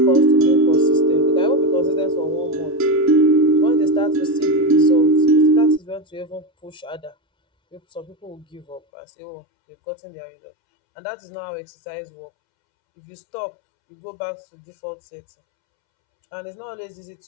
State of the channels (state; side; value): drops out; right; at 8.8 s